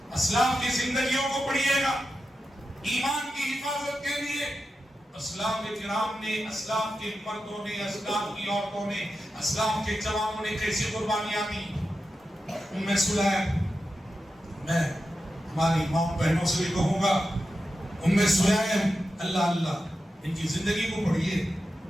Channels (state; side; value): normal; both; correlation 0.90